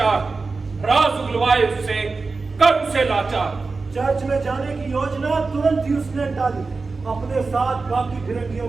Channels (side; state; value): left; quieter; 4.1 dB